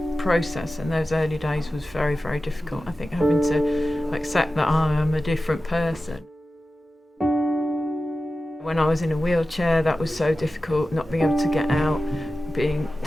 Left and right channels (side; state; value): both; normal; correlation 0.94